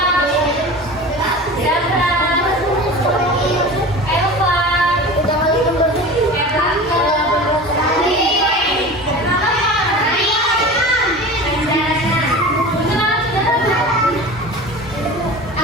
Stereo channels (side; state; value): both; normal; correlation 0.35